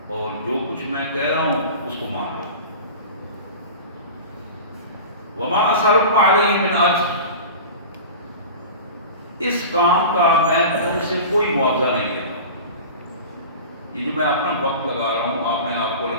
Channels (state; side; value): inverted; both; correlation -0.34